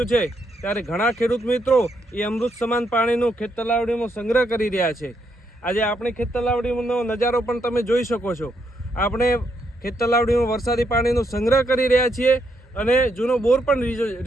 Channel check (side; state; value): both; normal; correlation 0.77